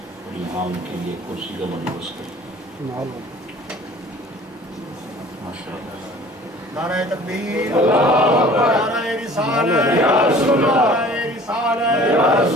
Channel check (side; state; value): both; normal; correlation 0.48